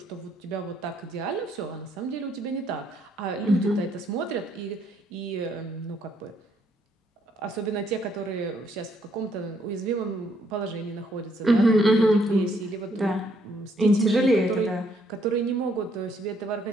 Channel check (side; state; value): both; normal; correlation 0.70